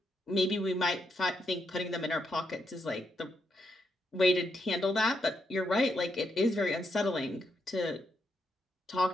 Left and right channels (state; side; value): normal; both; correlation 0.80